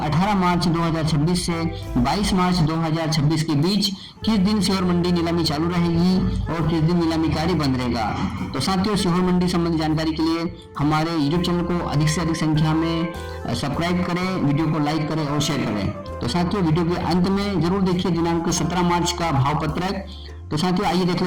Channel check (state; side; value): identical; both; correlation 1.00